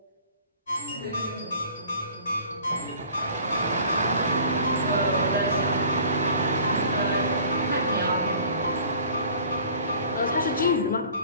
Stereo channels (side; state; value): both; inverted; correlation -0.49